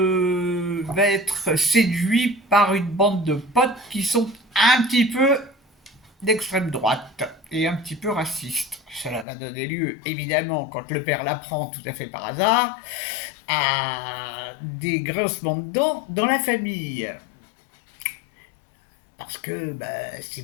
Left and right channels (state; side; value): drops out; right; at 9.2 s